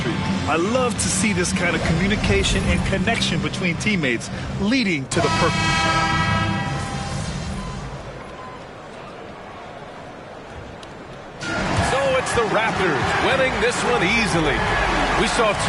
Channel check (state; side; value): identical; both; correlation 1.00